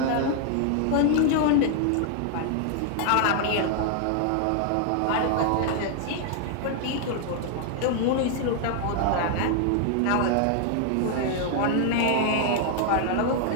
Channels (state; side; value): different; both; correlation 0.00